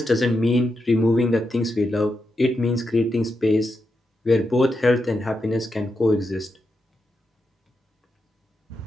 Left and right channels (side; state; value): both; normal; correlation 0.86